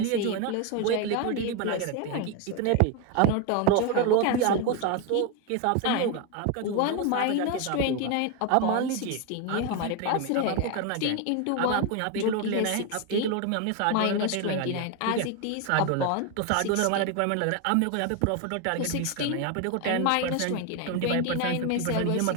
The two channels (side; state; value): both; different; correlation 0.02